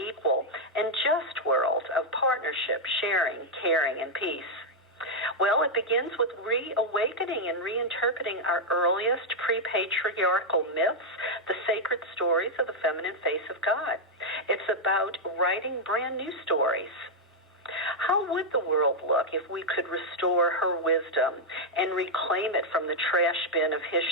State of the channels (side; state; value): both; normal; correlation -0.02